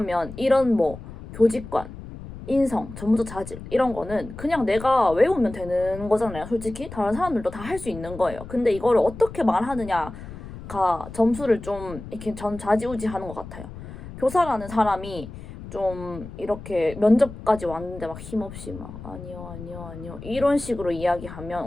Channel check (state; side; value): noise; left; rumble, 13 dB below the sound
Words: 이런 뭐 교직관, 인성, 전문적 자질 이런 거는 그냥 내가 외우면 되는 거잖아요. 솔직히 다른 사람들도 다 할 수 있는 거예요. 근데 이거를 어떻게 말하느냐가 점수를 좀 이렇게 전 좌지우지하는 것 같아요. 교사라는 사람이 좀 이렇게 면접까지 왔는데 막 힘없이 막 아니요 이런 식으로 이야기하면